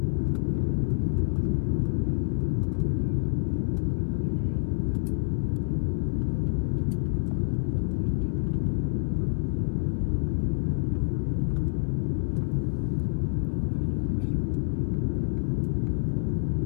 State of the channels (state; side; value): silent; right; 60 dB below the other